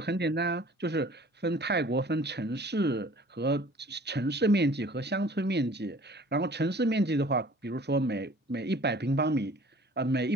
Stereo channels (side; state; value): both; normal; correlation 0.50